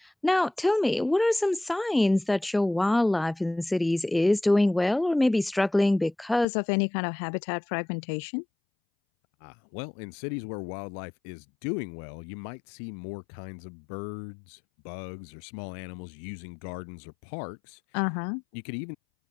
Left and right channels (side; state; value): right; drops out; at 6.5 s